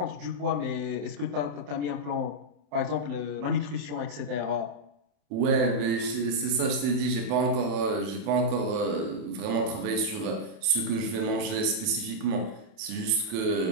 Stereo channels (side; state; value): left; late; 27 ms